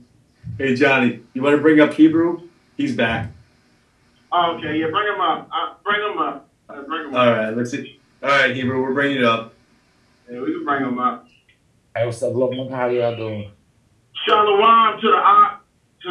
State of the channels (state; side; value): identical; both; correlation 1.00